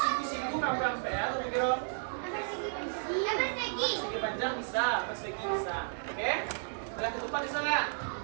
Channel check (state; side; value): silent; left; digital silence